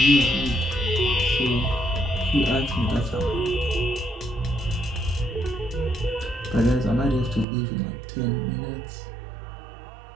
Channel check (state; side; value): drops out; left; at 7.5 s